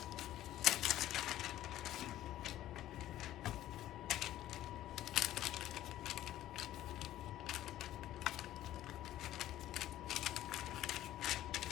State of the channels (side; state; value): right; quieter; 13.6 dB